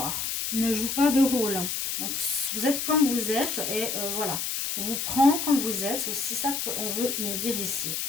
Ne joue pas de rôle. Donc, vous êtes comme vous êtes et voilà. On vous prend comme vous êtes. C'est aussi ça qu'on veut nous dire ici.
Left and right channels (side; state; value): left; noise; hiss, 2 dB below the sound